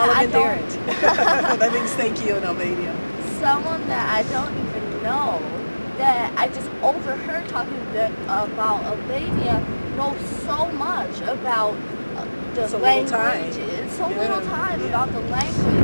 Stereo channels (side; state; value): both; inverted; correlation -1.00